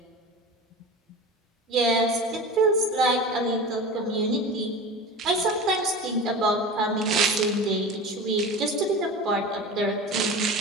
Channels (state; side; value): normal; both; correlation 0.32